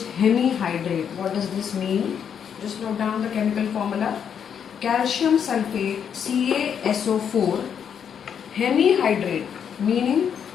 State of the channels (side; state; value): right; quieter; 7.9 dB